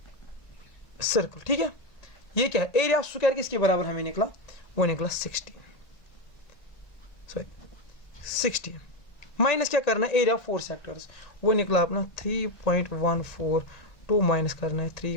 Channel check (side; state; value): right; late; 1.8 ms